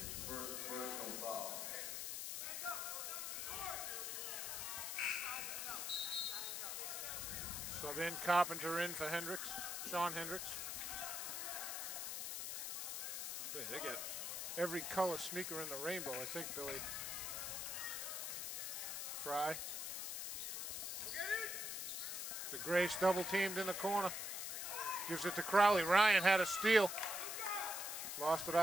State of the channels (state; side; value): noise; left; hiss, 3 dB below the sound